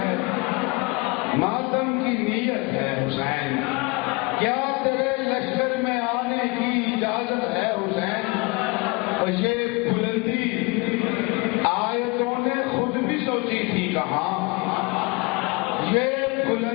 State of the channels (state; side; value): quieter; right; 26.7 dB